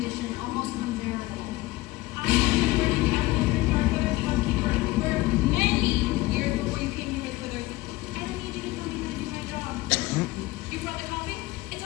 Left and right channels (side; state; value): right; quieter; 19.1 dB